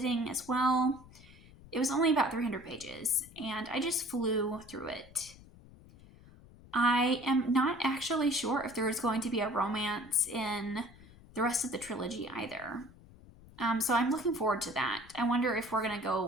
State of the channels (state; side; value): noise; left; rumble, 22 dB below the sound